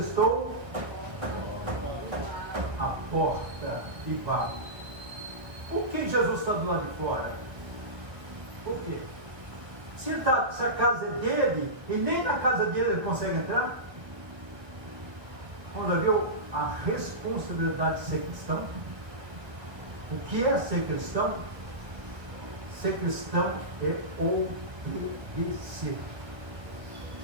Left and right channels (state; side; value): late; left; 1.3 ms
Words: à porta e bato. Por que Jesus está do lado de fora? Por quê? Se a casa é dele, e nem na casa dele ele consegue entrar, vamos ver a responsabilidade de ser cristão. O que é ser cristão? Ser cristão é obedecer.